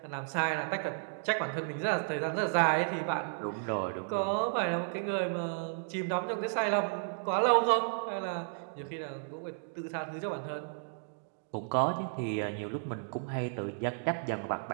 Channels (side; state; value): left; silent; digital silence